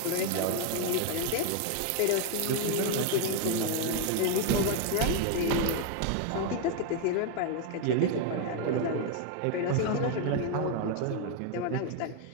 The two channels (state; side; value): different; both; correlation 0.01